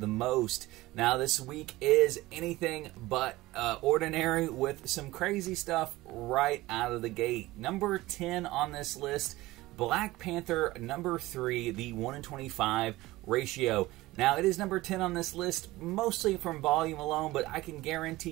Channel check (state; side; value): quieter; left; 18.6 dB